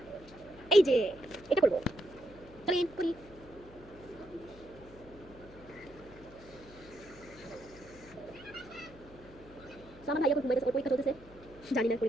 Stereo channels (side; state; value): left; noise; hum, 20 dB below the sound